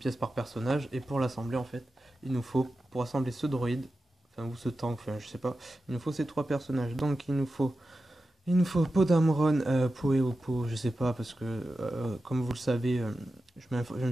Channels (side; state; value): both; normal; correlation 0.92